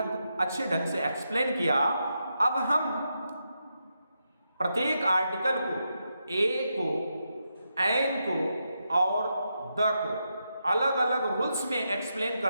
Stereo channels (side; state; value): both; inverted; correlation -0.85